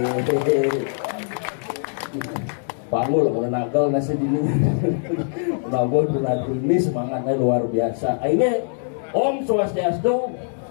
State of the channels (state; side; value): silent; right; digital silence